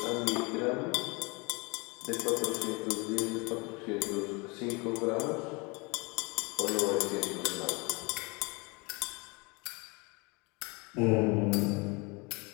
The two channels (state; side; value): quieter; right; 28.1 dB